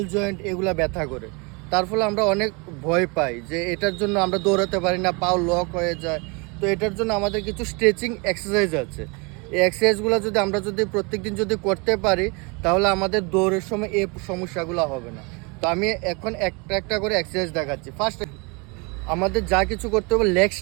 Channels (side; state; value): left; quieter; 30.3 dB